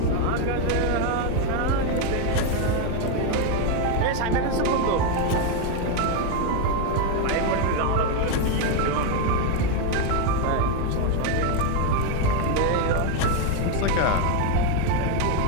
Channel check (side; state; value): both; different; correlation 0.02